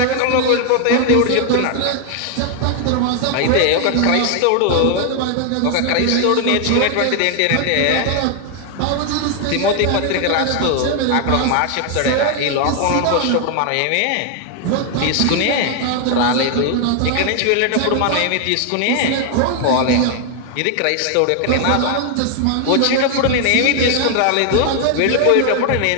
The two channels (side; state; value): both; different; correlation 0.00